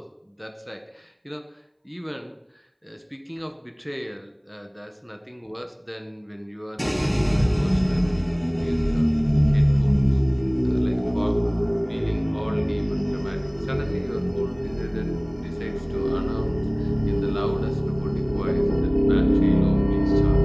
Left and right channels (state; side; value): identical; both; correlation 1.00